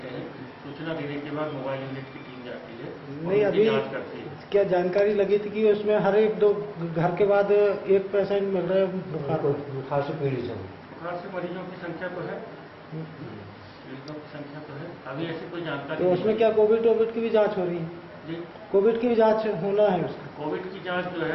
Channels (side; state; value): both; identical; correlation 1.00